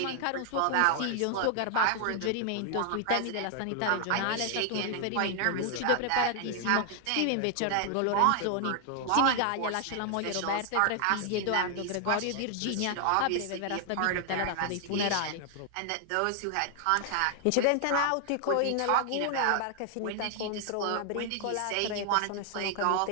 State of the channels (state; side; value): different; both; correlation 0.00